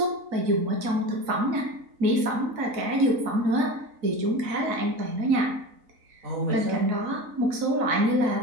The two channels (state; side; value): late; left; 4.0 ms